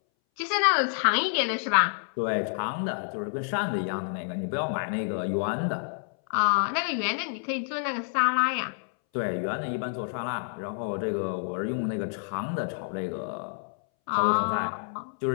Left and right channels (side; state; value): right; silent; 59 dB below the other